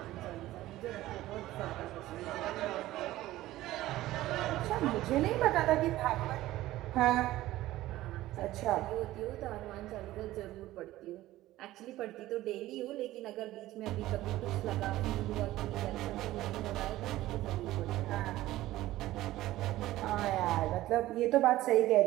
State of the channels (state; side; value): quieter; left; 15.9 dB